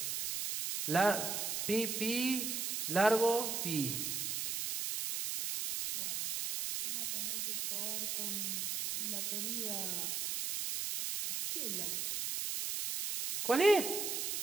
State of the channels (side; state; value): right; noise; hiss, 1 dB below the sound